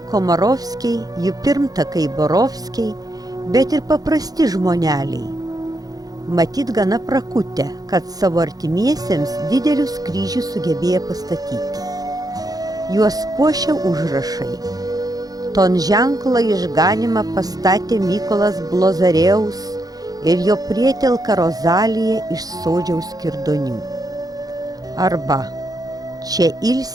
Komarovskiai, jų pirmtakai Borovskiai, bet ir paprasti žmoneliai. Matyt gana prakutę, kad savo artimiesiems didelius kryžius sugebėjo pastatyti. Juos puošia užrašai. Ton ženklą išganimą pastatė Mykolas Blozareus ir jo prietelka Rozalija iš Sodžiaus Kirdonių. Arba čia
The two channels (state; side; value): late; left; 0.18 ms